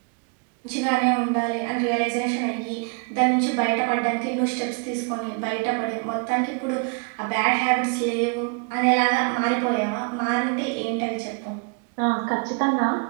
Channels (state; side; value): quieter; left; 35.9 dB